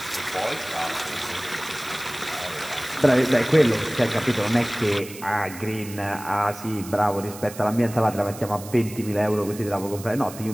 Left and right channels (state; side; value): noise; right; hiss, 15 dB below the sound